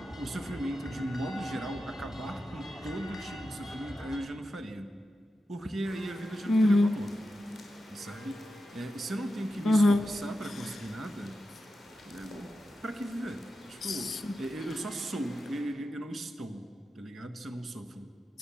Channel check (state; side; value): normal; both; correlation 0.90